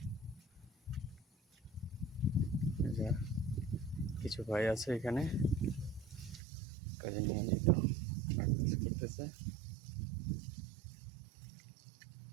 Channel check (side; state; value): left; drops out; at 6.4 s